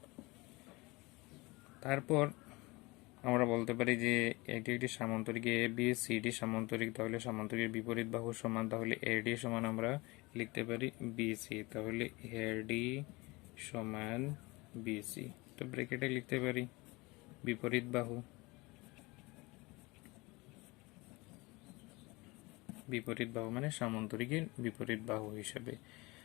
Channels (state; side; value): quieter; right; 23.9 dB